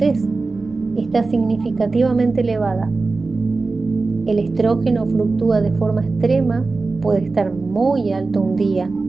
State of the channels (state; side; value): quieter; left; 3.8 dB